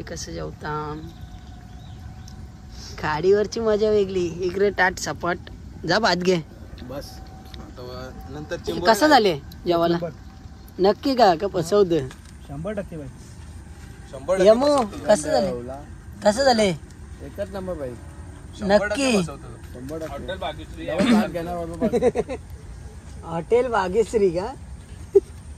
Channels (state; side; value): identical; both; correlation 1.00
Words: कसं जेवता खाडीवरची मजा वेगळी. इकडे टाट सपाट जा भात घे बस नंतर कसं झाले जेवायला नक्की का फसवत 100% बाई. यमो कसं झाले एकच नंबर बाई. नक्की. हॉटेल भाग्यश्री का